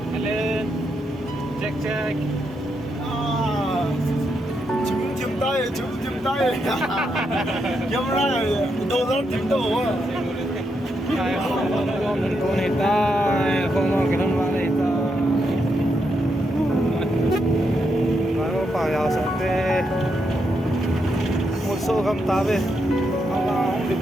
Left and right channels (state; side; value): normal; both; correlation 0.81